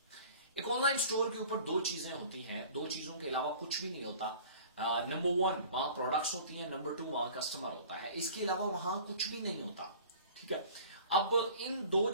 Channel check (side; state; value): both; inverted; correlation -0.45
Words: एक ऑनलाइन स्टोर के ऊपर दो चीजें होती हैं, दो चीजों के अलावा कुछ भी नहीं होता। नंबर वन, वहां प्रोडक्ट्स होती हैं। नंबर टू, वहां कस्टमर होता है। इसके अलावा वहां कुछ भी नहीं होता। ठीक है। अब इन दो